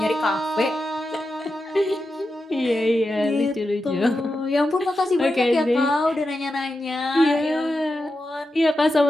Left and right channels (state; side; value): normal; both; correlation 0.89